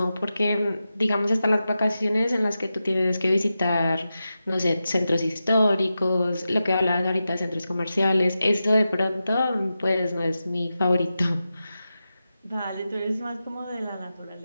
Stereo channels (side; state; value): both; inverted; correlation -0.91